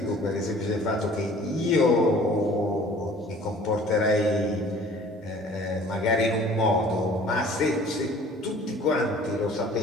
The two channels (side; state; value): both; normal; correlation 0.49